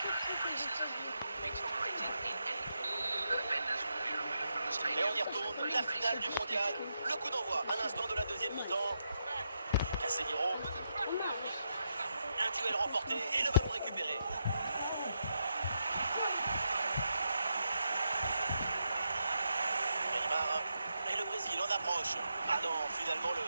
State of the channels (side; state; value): both; inverted; correlation -0.82